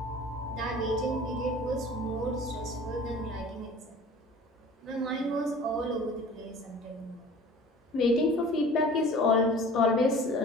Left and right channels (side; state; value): both; normal; correlation 0.44